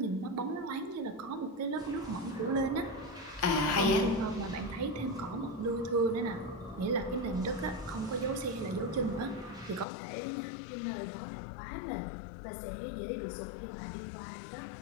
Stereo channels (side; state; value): right; drops out; at 9.9 s